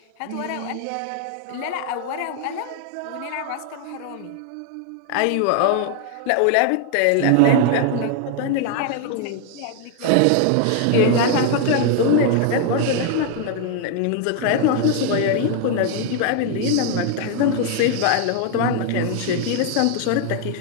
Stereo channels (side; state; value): both; different; correlation 0.00